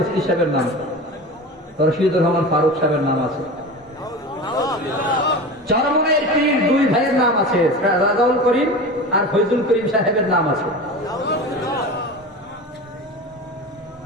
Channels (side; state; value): both; normal; correlation 0.30